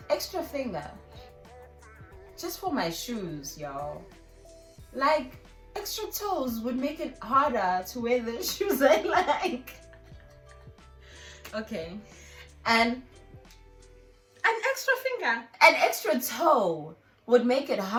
extra finger. Just for my shoes, y'all. Like, extra toes would make it harder to wear the shoes I like. Okay. And an extra finger. An extra toe would make it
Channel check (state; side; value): identical; both; correlation 1.00